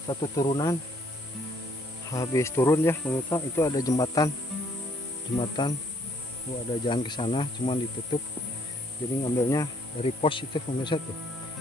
satu turunan, habis turun ya pemirsa, itu ada jembatan ada jalan ke sana cuman ditutup, jadi ngambilnya dari pos itu pemirsa tuh,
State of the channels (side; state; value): both; normal; correlation 0.65